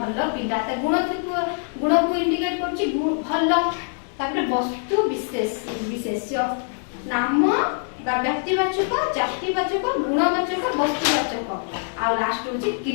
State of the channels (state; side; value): silent; right; 56 dB below the other